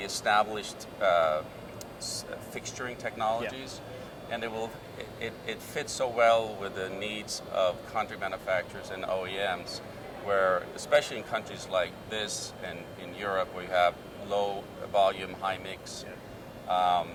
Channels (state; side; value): identical; both; correlation 1.00